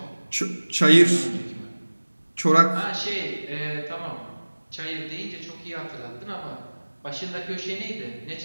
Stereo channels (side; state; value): both; inverted; correlation -1.00